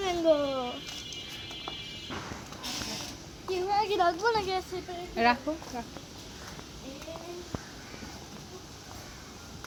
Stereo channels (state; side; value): identical; both; correlation 1.00